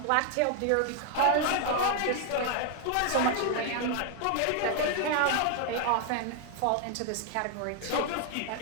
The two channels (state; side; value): different; both; correlation 0.00